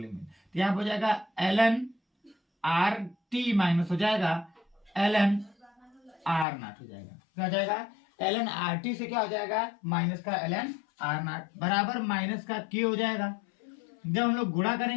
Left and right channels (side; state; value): right; drops out; at 6.5 s